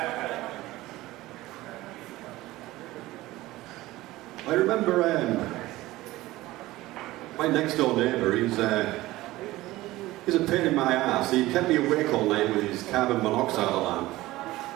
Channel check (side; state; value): left; quieter; 17.8 dB